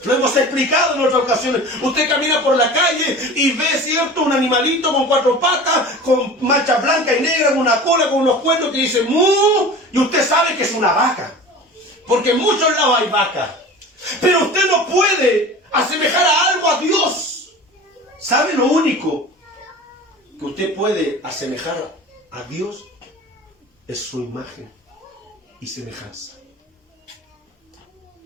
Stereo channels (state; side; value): normal; both; correlation 0.37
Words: Lo hemos explicado en otras ocasiones. Usted camina por la calle y ve, ¿cierto?, un animalito con 4 patas, con manchas blancas y negras, con una cola, con unos cuernos que dice ¡mu! Y usted sabe que es una vaca. Porque en muchos lados hay vaca. Pero usted no puede asemejar a algo a Dios. ¿Sabe lo único que usted puede asemejar a Dios? Es su imagen y semejanza,